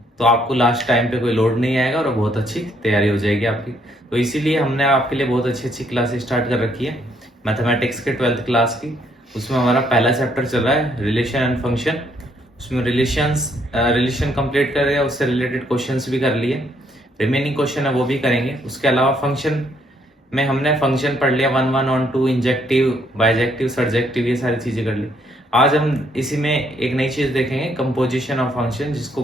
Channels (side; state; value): both; normal; correlation 0.70